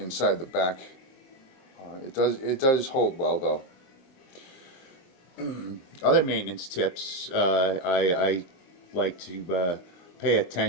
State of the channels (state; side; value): late; right; 22 ms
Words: the back. It does hold well though. Other maintenance tips I like to pay